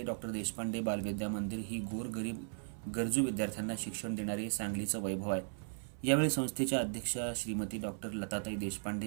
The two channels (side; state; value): left; silent; 53 dB below the other